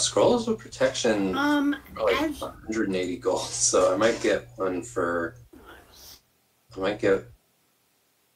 of Protection are like as 180 gold, so I might get one for... I might get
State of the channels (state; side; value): identical; both; correlation 1.00